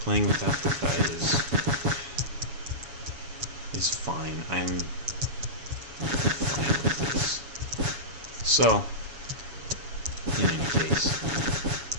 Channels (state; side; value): late; left; 7.1 ms